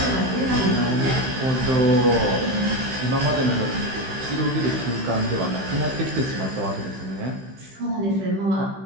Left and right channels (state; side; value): late; left; 15 ms